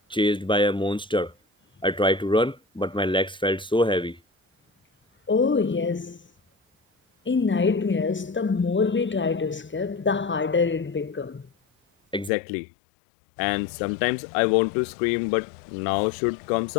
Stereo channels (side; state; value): right; drops out; at 12.3 s